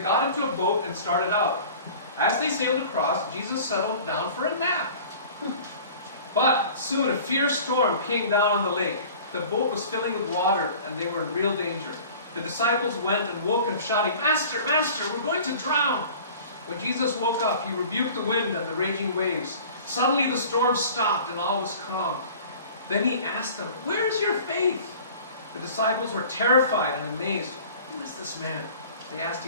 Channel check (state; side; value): inverted; both; correlation -0.44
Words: into a boat and started out. As they sailed across, Jesus settled down for a nap. But soon a fierce storm came down on the lake. The boat was filling with water, and they were in real danger. The disciples went and woke him, shouting, "Master, Master, we're going to drown!" When Jesus woke up, he rebuked the wind and the raging waves. Suddenly the storm stopped, and all was calm. Then he asked them, "Where is your faith?" The disciples were terrified and amazed. "Who is this man?" they asked